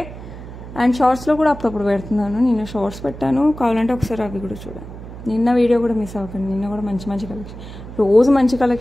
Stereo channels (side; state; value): right; noise; hum, 13 dB below the sound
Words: and షార్ట్స్లో కూడా అప్పుడప్పుడు పెడుతున్నాను, నిన్న షార్ట్స్ పెట్టాను, కావాలంటే ఒకసారి అవి కూడా చూడండి. నిన్న వీడియో కూడా మిస్ అవ్వకండి, నిన్న కూడా మంచి మంచి కలెక్షన్, రోజు మంచి